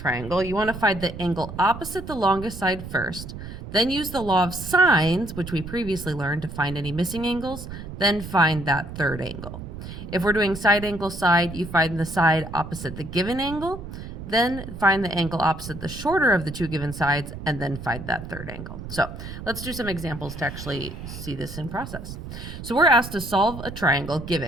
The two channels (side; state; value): right; noise; rumble, 10 dB below the sound